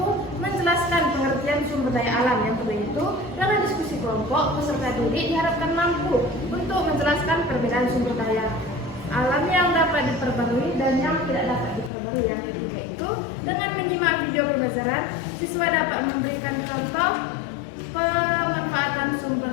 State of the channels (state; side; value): drops out; right; at 11.9 s